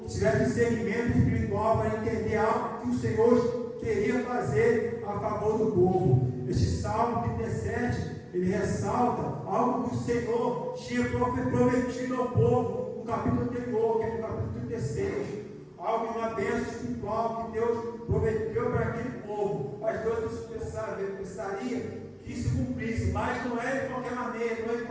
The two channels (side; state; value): both; identical; correlation 1.00